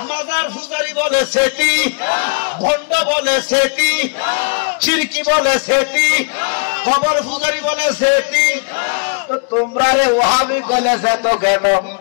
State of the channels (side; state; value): right; quieter; 37.6 dB